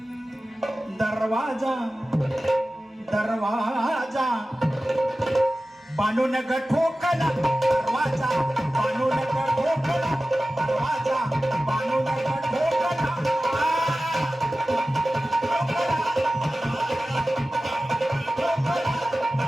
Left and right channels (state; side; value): normal; both; correlation 0.96